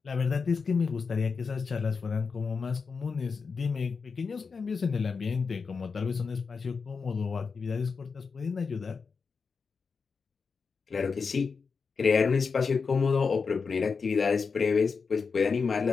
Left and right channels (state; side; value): quieter; right; 5.1 dB